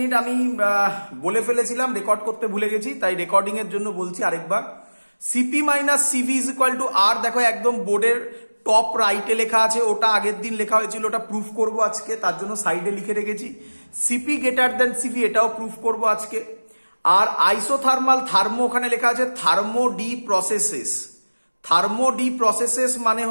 আমি বলে ফেলেছিলাম, রেকর্ড করতে ভুলে গেছি, তাই রেকর্ডিং এর জন্য বলছি আরেকবার। CP minus CV is equal to R. দেখো একদম বোর্ডের টপ রাইটে লেখা আছে, ওটা আগের দিন লেখা হয়েছিল, ওটা প্রুফ করব আজকে, তার জন্য সাইডে লিখে রেখেছি। সিপি গ্রেটার দেন সিভি, এটাও প্রুফ করব আজকে। আর আইসোথার্মাল থার্মো ওখানে লেখা আছে thermo D processes. Thermo D processes মানে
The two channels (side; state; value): both; inverted; correlation -1.00